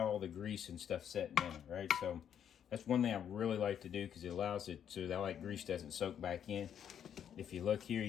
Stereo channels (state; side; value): quieter; right; 9.0 dB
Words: all the grease and stuff setting in it, right? So that's one thing I really like to do because it allows it so that like grease doesn't soak back in. If you look here,